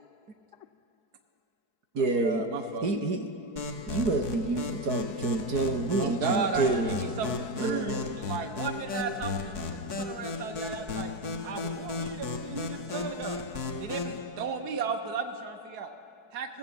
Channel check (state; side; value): late; left; 4.7 ms